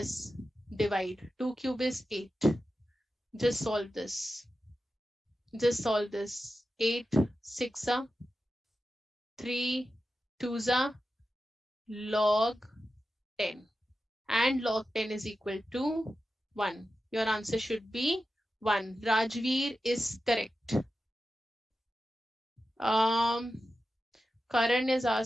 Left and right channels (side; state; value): both; normal; correlation 0.92